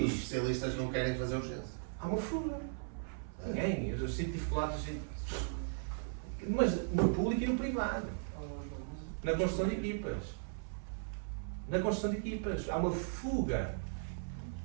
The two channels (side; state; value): left; silent; 53 dB below the other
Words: especialistas não querem fazer urgência. Há uma fuga. Ninguém. Eu sinto dificuldades. Mas no público e no privado. Na construção de equipas. Na construção de equipas. Há uma fuga.